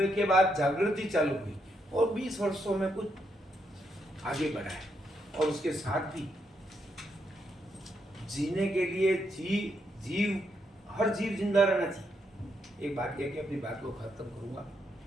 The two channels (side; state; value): both; normal; correlation 0.79